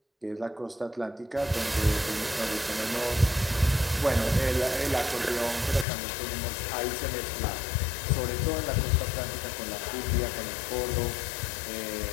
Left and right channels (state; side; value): drops out; right; at 5.9 s